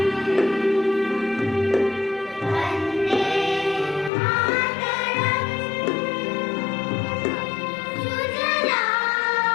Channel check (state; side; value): drops out; right; at 4.1 s